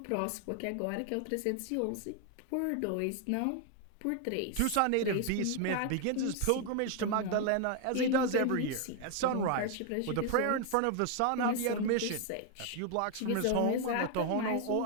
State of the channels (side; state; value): both; different; correlation 0.00